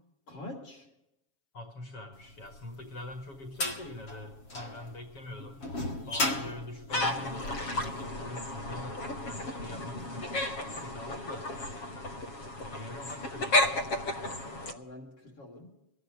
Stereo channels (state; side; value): late; right; 7.3 ms